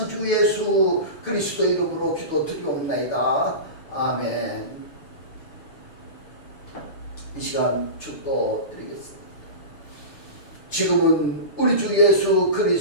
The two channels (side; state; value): right; late; 6.7 ms